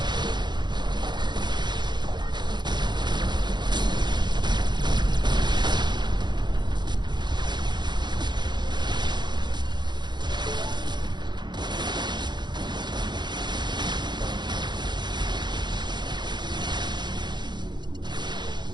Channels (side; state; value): left; late; 0.21 ms